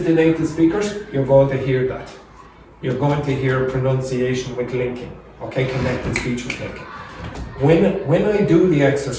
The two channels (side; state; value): both; identical; correlation 1.00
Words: to native speakers, you're going to hear that. You're going to hear pronunciation with linking, okay, connected speech with linking. When I do the